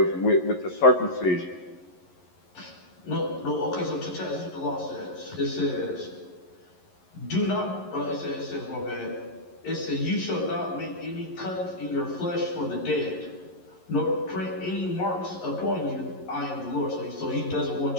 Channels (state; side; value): late; right; 11 ms